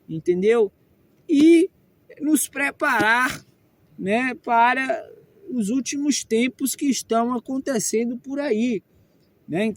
entendeu? E nos preparar, né, para os últimos tempos que estão acontecendo por aí, né?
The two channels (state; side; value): identical; both; correlation 1.00